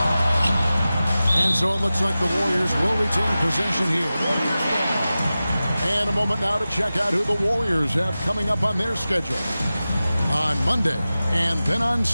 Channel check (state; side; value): inverted; both; correlation -0.95